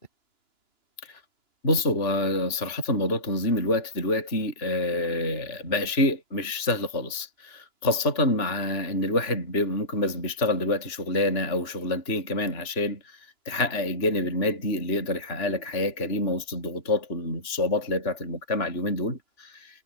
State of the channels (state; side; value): late; right; 2.9 ms